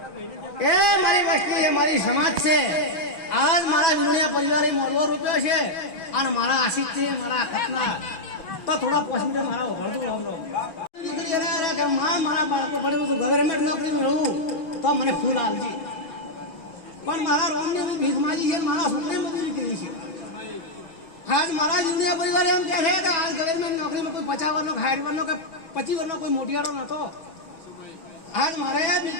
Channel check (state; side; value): late; right; 6.1 ms